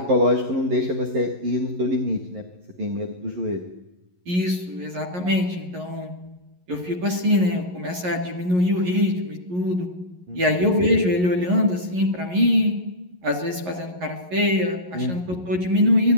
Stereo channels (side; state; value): left; late; 11 ms